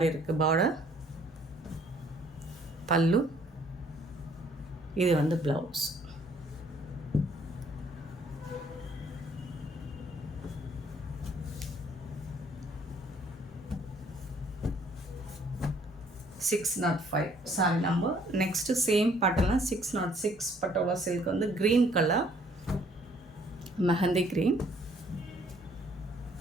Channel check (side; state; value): both; normal; correlation 0.62